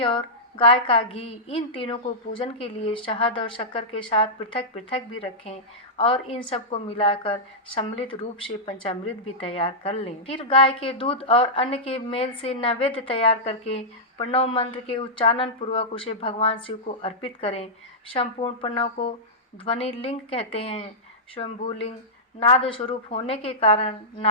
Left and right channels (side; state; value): both; normal; correlation -0.13